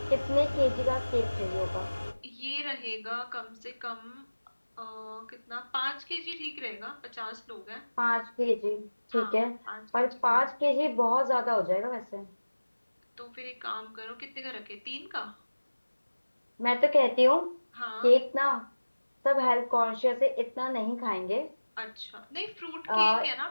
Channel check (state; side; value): inverted; both; correlation -1.00